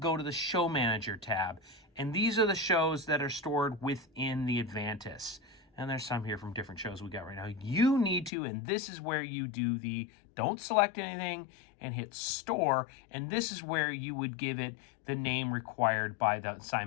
to the Show Manager tab. And these are the shows that are stored within the Avantis. And there's some here from different shows we got right now. You need to, and this is where you do the, don't select anything and hit store. And this is where you would give it the name required by the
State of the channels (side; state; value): right; drops out; at 8.3 s